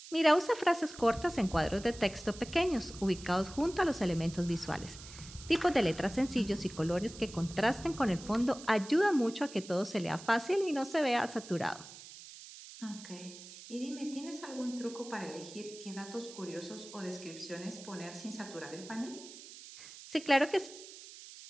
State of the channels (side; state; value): right; noise; hiss, 16 dB below the sound